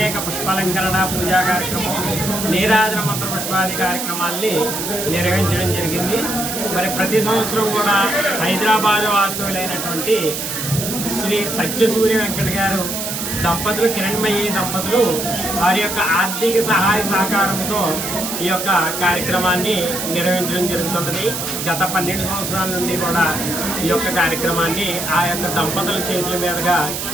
పుష్పాలంకరణ పూజా కార్యక్రమం, నీరాజన మంత్ర పుష్పాది కార్యక్రమాల్ని నిర్వహించడం జరిగింది. మరి ప్రతి సంవత్సరం కూడా హైదరాబాద్ వాస్తవులైనటువంటి శ్రీ సత్యసూర్య వెంకట గారు దంపతులు, కిరణ్మయ్యి దంపతులు వారి యొక్క ఆర్థిక సహాయ సహకారంతో ఈ యొక్క కార్యక్రమాన్ని నిర్వహించడం జరుగుతున్నది. గత 12 సంవత్సరాల నుండి కూడా ఈ యొక్క కార్యక్రమాన్ని ఆ యొక్క దంపతుల చేతుల మీదుగా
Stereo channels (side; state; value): right; noise; hiss, 4 dB below the sound